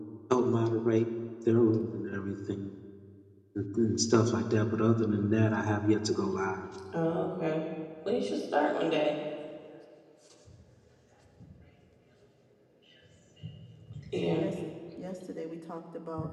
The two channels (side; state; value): both; identical; correlation 1.00